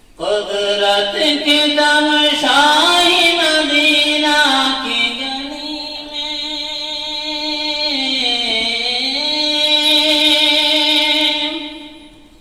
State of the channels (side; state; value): both; identical; correlation 1.00